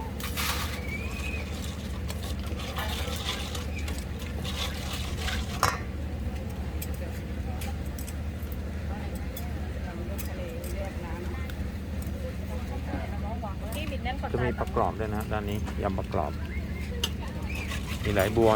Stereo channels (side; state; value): both; identical; correlation 1.00